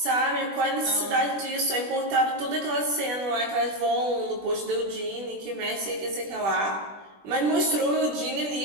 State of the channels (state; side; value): late; left; 20 ms